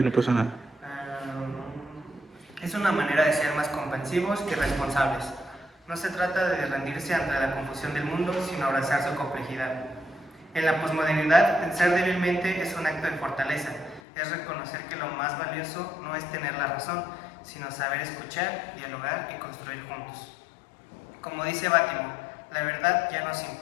pasa nada. Es una manera de ser más comprensivos y responsables. No se trata de rendirse ante la confusión del mundo, sino abrazar su complejidad. En la posmodernidad, pensar débilmente es un acto de fortaleza. Es reconocer que lo más valioso no es tener la razón, sino saber escuchar, dialogar y construir juntos. Como dice Bátimo, la verdad ya no se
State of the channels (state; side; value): drops out; right; at 14.0 s